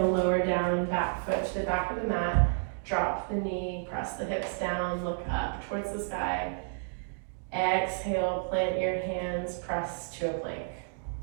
lower down, back foot to the back of the mat. Drop the knee, press the hips down, look up towards the sky. Exhale, plant your hands, press to a plank.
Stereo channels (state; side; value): silent; left; digital silence